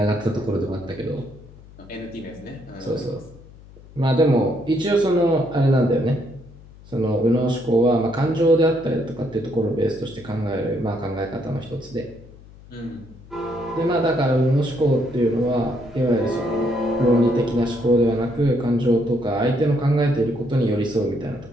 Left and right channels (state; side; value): noise; left; hum, 21 dB below the sound